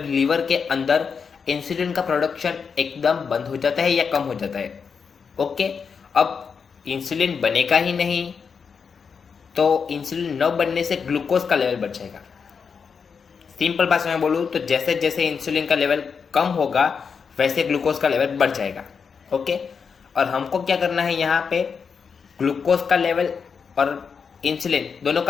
लीवर के अंदर इंसुलिन का प्रोडक्शन एकदम बंद हो जाता है या कम हो जाता है। ओके, अब इंसुलिन बनेगा ही नहीं तो इंसुलिन न बनने से ग्लूकोज का लेवल बढ़ जाएगा। सिंपल भाषा में बोलूँ तो जैसे जैसे इंसुलिन का लेवल कम होगा वैसे ग्लूकोज का लेवल बढ़ जाएगा। ओके, और हमको क्या करना है यहाँ पे, ग्लूकोज का लेवल और इंसुलिन दोनों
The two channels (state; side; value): quieter; right; 6.0 dB